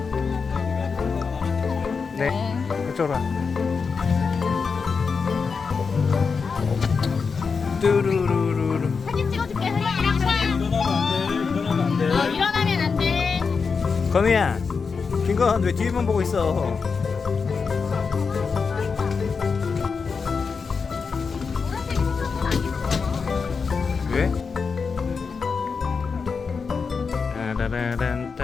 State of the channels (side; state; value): right; quieter; 5.2 dB